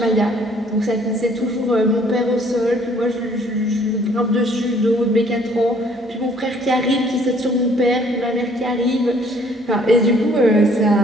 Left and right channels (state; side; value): normal; both; correlation 0.59